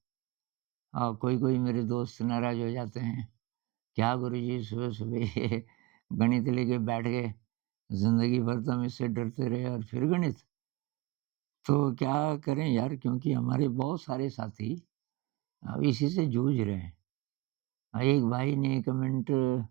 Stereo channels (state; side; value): quieter; left; 20.4 dB